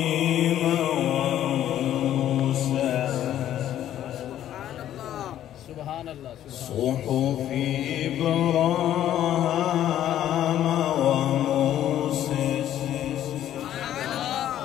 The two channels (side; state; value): right; quieter; 11.6 dB